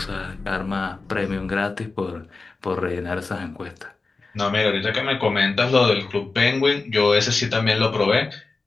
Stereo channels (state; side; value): quieter; right; 3.9 dB